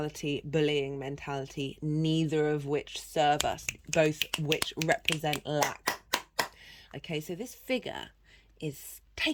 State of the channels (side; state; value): both; identical; correlation 1.00